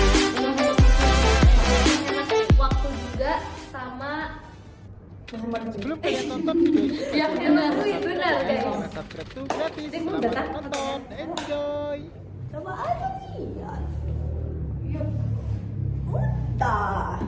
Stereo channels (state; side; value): identical; both; correlation 1.00